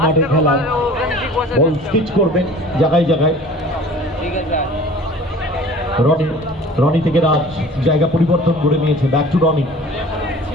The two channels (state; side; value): normal; both; correlation 0.45